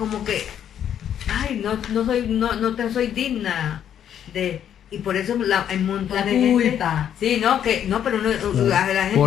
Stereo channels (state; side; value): quieter; right; 9.6 dB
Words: que, ay, no te soy digna de. Y por eso hay un montón La de gente. culpa. Sí, pero uno, la gente.